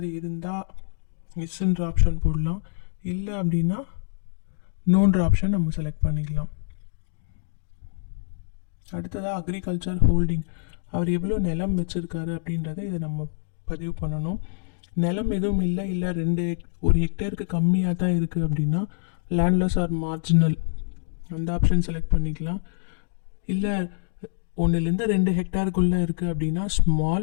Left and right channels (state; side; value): silent; right; digital silence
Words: இருந்தால் எஸ்ன்ற ஆப்ஷன் போடலாம். இல்லை அப்படின்னா நோன்ற ஆப்ஷன் நம்ம செலக்ட் பண்ணிக்கலாம். அடுத்ததாக அக்ரிகல்ச்சர் ஹோல்டிங், அவர் எவ்வளோ நிலம் வச்சுருக்காரு அப்படின்றத இதை நம்ம பதிவு பண்ணணும். நிலம் எதுவும் இல்லை ஒரு ஹெக்டேருக்கு கம்மியாக தான் இருக்குது அப்படின்னா லேண்ட்லெஸ் ஆர் மார்ஜினல் அந்த ஆப்ஷன் செலக்ட் பண்ணிக்கலாம். இல்லை 1-2 ஹெக்டேருக்குள்ளே இருக்குது அப்படின்னா ஸ்மால்,